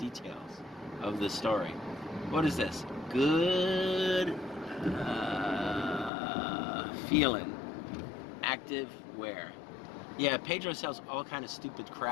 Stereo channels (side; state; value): right; drops out; at 6.1 s